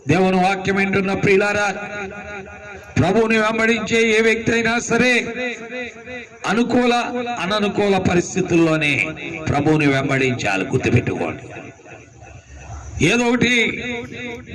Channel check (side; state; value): both; identical; correlation 1.00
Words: దేవుని వాక్యం ఏంటున్న ప్రియులారా, ప్రభువుని వెంబడించే ఏ వ్యక్తి అయినా సరే అనుకూల అననుకూల పరిస్థితుల్లోనే ప్రభువుని వెంబడించాలి. గుర్తుపెట్టుకోండి. ఏదో ఒకటి